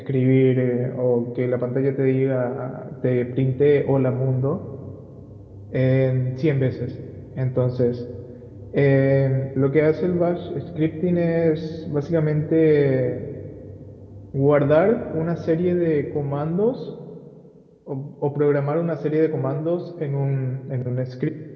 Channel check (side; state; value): both; identical; correlation 1.00